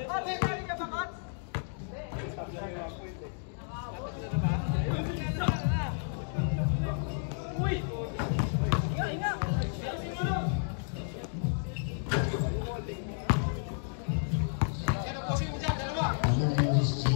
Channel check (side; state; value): right; silent; digital silence